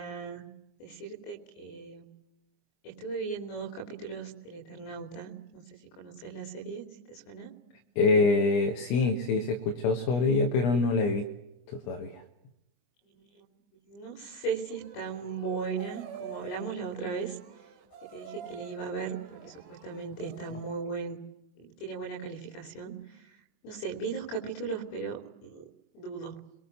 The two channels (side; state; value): right; late; 25 ms